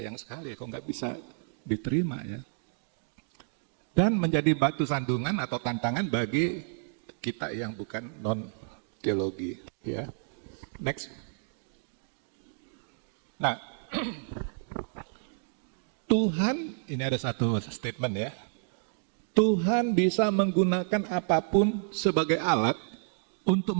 sekali kok nggak bisa diterima ya. Dan menjadi batu sandungan atau tantangan bagi kita yang bukan non-teologi. Ya. Next. Nah, Tuhan, ini ada satu statement ya. Tuhan bisa menggunakan apapun sebagai alat untuk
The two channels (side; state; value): left; silent; digital silence